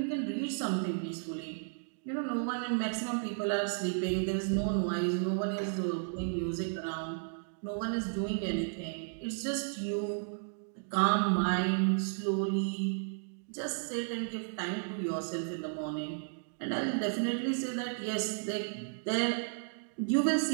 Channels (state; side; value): silent; left; digital silence